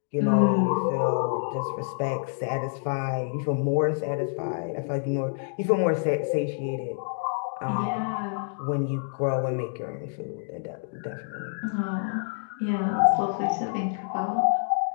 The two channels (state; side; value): silent; right; digital silence